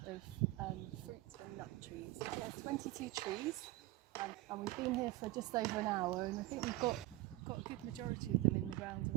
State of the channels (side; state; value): left; quieter; 18.1 dB